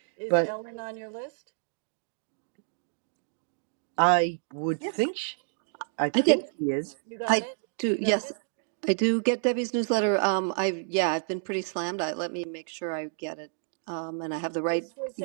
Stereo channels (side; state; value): left; silent; digital silence